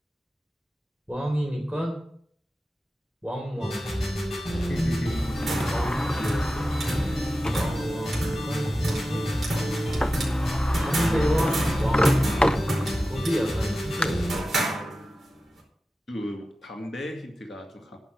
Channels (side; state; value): both; normal; correlation 0.94